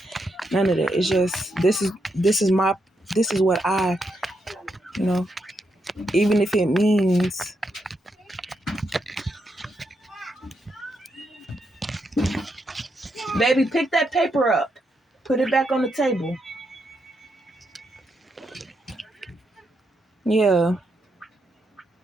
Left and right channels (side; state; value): both; normal; correlation 0.81